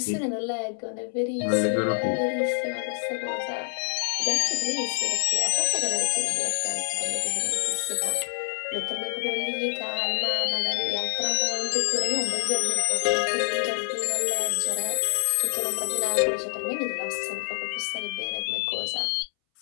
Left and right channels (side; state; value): right; silent; 60 dB below the other